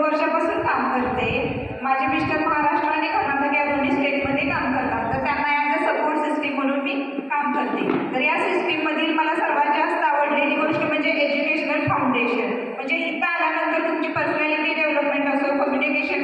वर्षापासून काम करते. माझे मिस्टर महाराष्ट्र आणि कर्नाटक या दोन्ही स्टेटमध्ये काम करतात, तर त्यांना ॲज अ सपोर्ट सिस्टीम म्हणून मी काम करते. तर या सिस्टीममधील मला सर्वात जास्त आवडलेली गोष्ट म्हणजे एज्युकेशनल फाउंडेशन. म्हणजे इथं आल्यानंतर तुमची पर्सनॅलिटी डेव्हलपमेंट असो,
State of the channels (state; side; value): identical; both; correlation 1.00